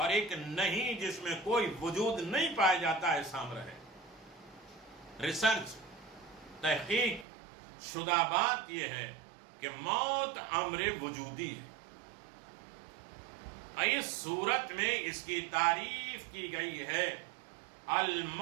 ایک نہیں، جس میں کوئی وجود نہیں پایا جاتا، ایسا امر ہے۔ ریسرچ، تحقیق شدہ بات یہ ہے کہ موت امر وجودی ہے۔ اس صورت میں اس کی تعریف کی گئی ہے،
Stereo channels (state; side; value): drops out; left; at 7.2 s